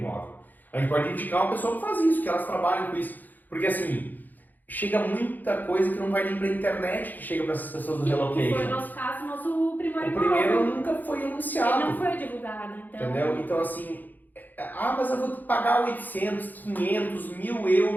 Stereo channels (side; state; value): right; late; 0.085 ms